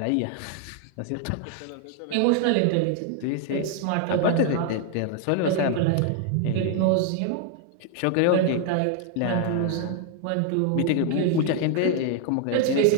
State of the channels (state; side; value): different; both; correlation 0.00